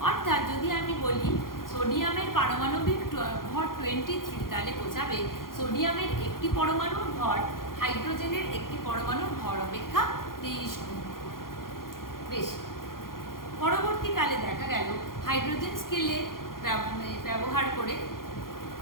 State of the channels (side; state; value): right; late; 0.91 ms